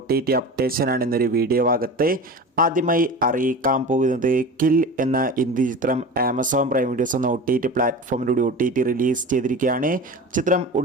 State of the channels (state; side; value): normal; both; correlation 0.32